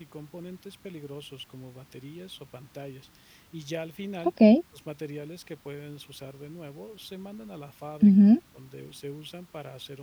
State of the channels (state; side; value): identical; both; correlation 1.00